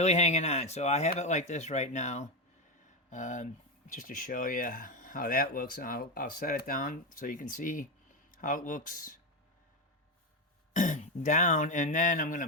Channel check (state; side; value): normal; both; correlation 0.11